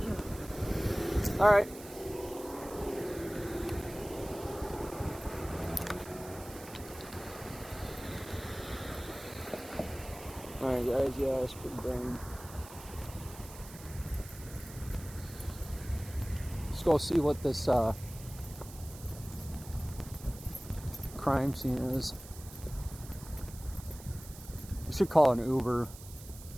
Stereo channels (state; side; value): noise; right; hiss, 16 dB below the sound